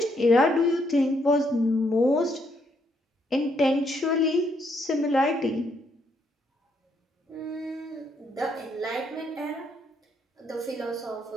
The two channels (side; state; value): both; normal; correlation 0.73